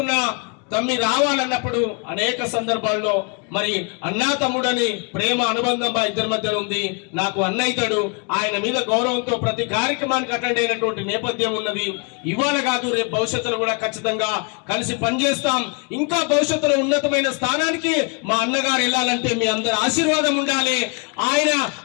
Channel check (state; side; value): quieter; right; 35.3 dB